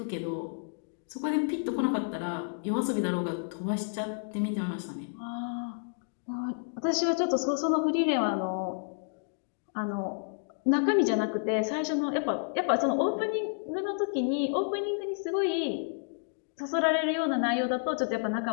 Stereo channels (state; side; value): silent; right; digital silence